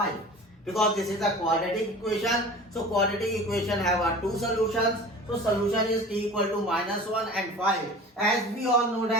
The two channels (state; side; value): normal; both; correlation 0.39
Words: Because this is a quadratic equation. So quadratic equation have two solutions. So solution is t equal to minus 1 and 5. As we all know